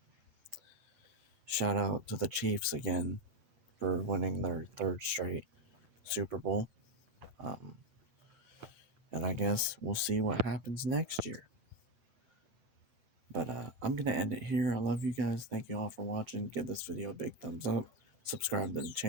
Shout out to the Chiefs again for winning their third straight Super Bowl. Um, and I guess we'll see what happens next year. But I'm going to end it here. I love you guys. Thank you all for watching. Give this video a big thumbs up. Subscribe to the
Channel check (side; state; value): left; late; 8.9 ms